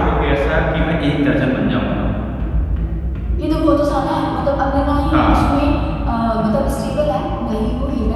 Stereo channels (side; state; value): both; identical; correlation 1.00